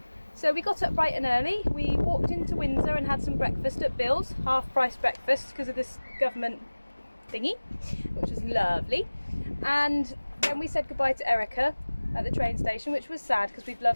So we got up bright and early. We walked into Windsor and had some breakfast at Bill's, half-price breakfast because of this government thingy, which was lovely. And then we said goodbye to Erica at the train station, which was sad because we've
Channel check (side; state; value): both; inverted; correlation -1.00